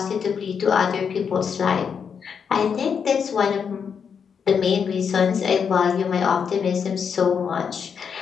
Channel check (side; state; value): right; quieter; 6.7 dB